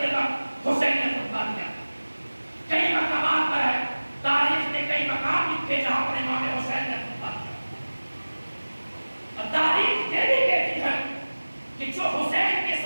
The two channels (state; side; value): inverted; both; correlation -1.00